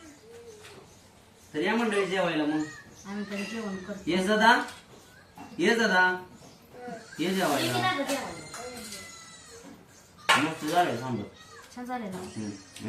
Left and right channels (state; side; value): identical; both; correlation 1.00